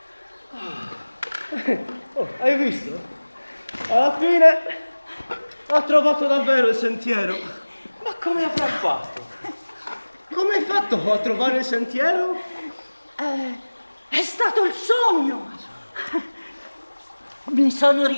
Oh, hai visto? Alla fine ha trovato davvero il sentiero. Ma come avrà fatto? Come hai fatto a trovare il sentiero? è stato il sogno. Mi sono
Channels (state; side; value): inverted; both; correlation -1.00